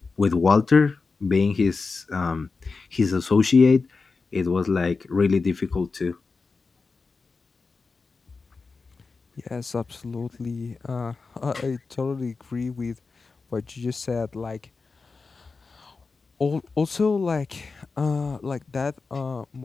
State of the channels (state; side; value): quieter; right; 4.3 dB